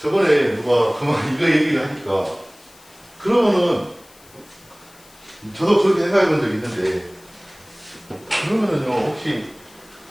저번에 누가 그만 이거 얘기를 하니까 그러면은 저도 그렇게 생각해 본 적이 있는데 그러면은요 혹시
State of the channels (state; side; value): noise; left; hiss, 26 dB below the sound